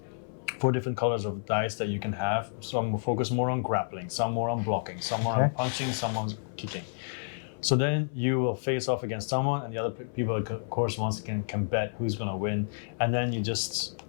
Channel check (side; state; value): right; silent; 57 dB below the other